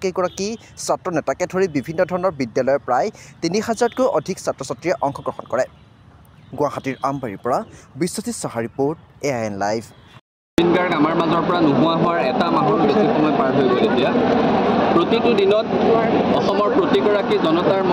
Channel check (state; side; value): identical; both; correlation 1.00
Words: ছাত্ৰ নেতাকে ধৰি বিভিন্ন ধৰণৰ বিদ্যালয়ৰ প্ৰায় ৩,০০০তকৈ অধিক ছাত্ৰ ছাত্ৰীয়ে অংশগ্ৰহণ কৰে। গুৱাহাটীৰ আমবাৰীৰ পৰা Biswajit Saha report, AIN live. Zubeen Garg আমাৰ মাজৰ পৰা নোহোৱা হোৱাৰ এটা মাহৰ বেছি সময় পাৰ হৈ গ'ল। এতিয়া প্ৰতিটো দিনত অসমৰ প্ৰতিগৰাকী জনতাৰ